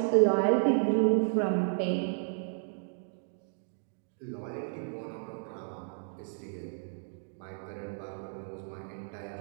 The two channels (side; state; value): left; silent; digital silence